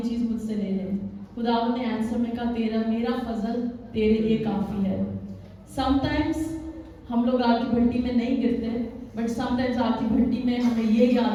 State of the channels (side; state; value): both; identical; correlation 1.00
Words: چیز مجھ سے لے لے۔ خداوند نے آنسر میں کہا میرا فضل تیرے لیے کافی ہے۔ سم ٹائمز ہم لوگ آگ کی بھٹی میں نہیں گرتے، بٹ سم ٹائمز آگ کی بھٹی میں ہمیں یہ